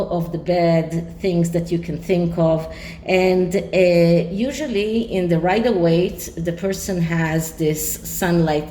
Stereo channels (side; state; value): both; identical; correlation 1.00